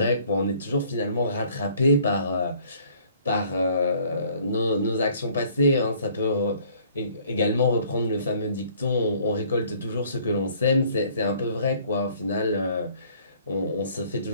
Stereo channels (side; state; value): both; inverted; correlation -0.58